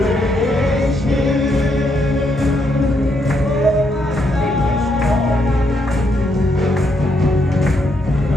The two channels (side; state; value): both; normal; correlation 0.76